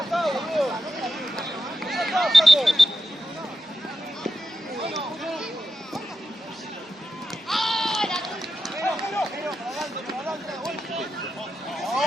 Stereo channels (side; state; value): both; normal; correlation 0.89